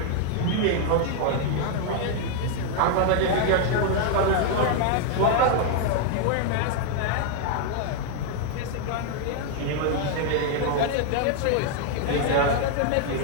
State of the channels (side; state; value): both; different; correlation 0.00